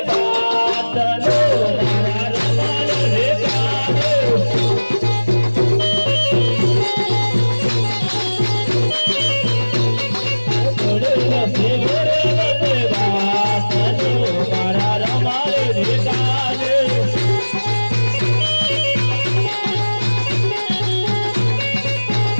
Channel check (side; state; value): both; inverted; correlation -1.00